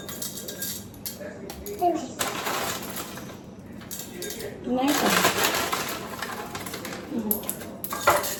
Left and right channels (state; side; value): identical; both; correlation 1.00